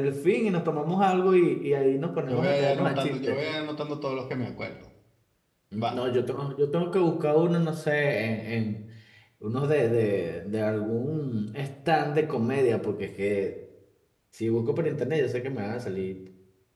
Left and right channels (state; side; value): identical; both; correlation 1.00